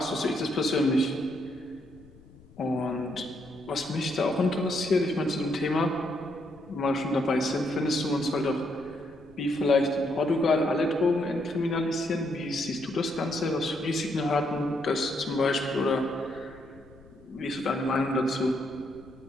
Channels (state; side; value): noise; left; rumble, 24 dB below the sound